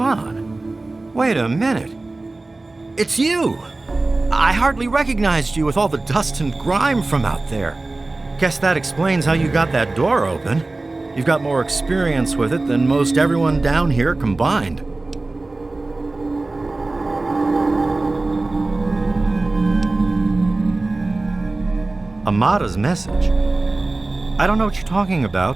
on. Wait a minute. It's you! I hardly recognized you with all the dust and grime from out there. Guess that explains how you got that door open. You've got more experience with it than most everyone down here combined. Amada's message. I don't know what you're talking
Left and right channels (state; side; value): quieter; left; 3.1 dB